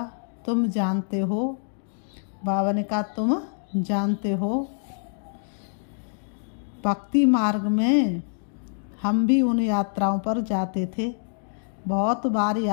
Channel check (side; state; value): right; silent; digital silence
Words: तुम जानते हो, बाबा ने कहा तुम जानते हो, भक्ति मार्ग में हम भी उन यात्राओं पर जाते थे। बहुत बार